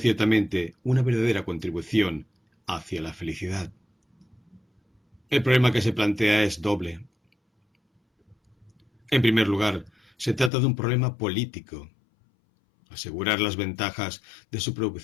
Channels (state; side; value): drops out; right; at 10.5 s